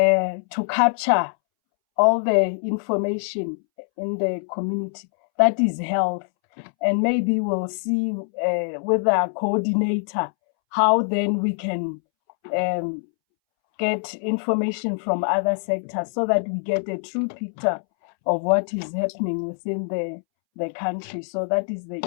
capture all the information in the community that is health. And maybe we'll see with our coordinator how then we can get information from other sectors so that we get a true picture of what is happening within the country. So that is the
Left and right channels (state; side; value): silent; right; 63 dB below the other